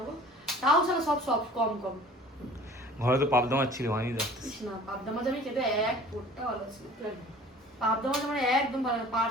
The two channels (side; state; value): both; normal; correlation 0.46